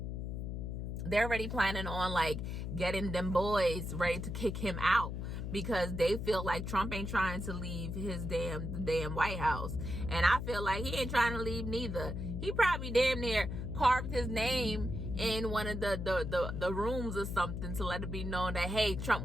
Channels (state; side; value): noise; left; hum, 4 dB below the sound